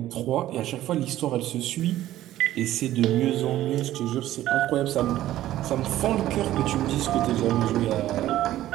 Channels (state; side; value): quieter; left; 14.0 dB